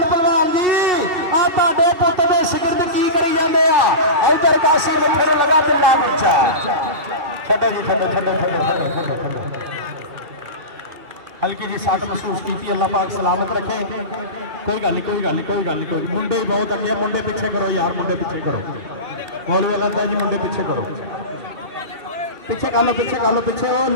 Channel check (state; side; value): late; left; 2.4 ms